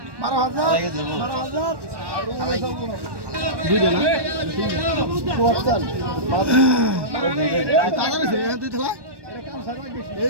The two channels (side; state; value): left; late; 1.2 ms